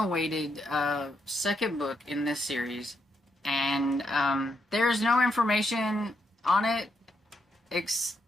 second book in this series, and there's no information on it,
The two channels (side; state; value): both; normal; correlation 0.80